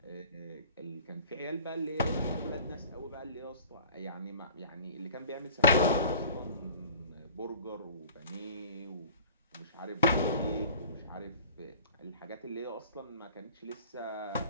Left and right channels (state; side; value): inverted; both; correlation -0.44